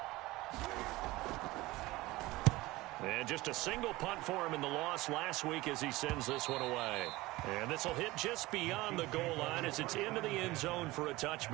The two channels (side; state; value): left; quieter; 19.6 dB